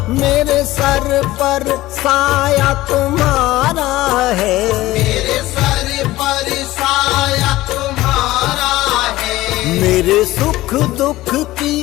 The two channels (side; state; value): right; quieter; 17.1 dB